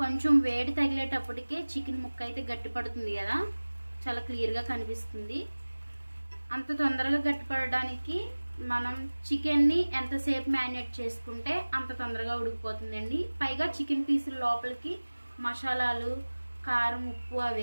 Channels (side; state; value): both; inverted; correlation -1.00